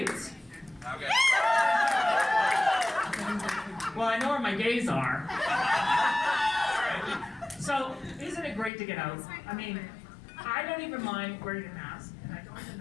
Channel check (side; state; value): right; drops out; at 8.7 s